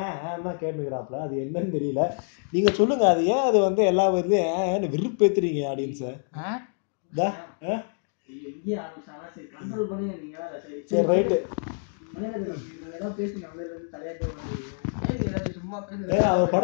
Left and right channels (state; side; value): silent; right; 60 dB below the other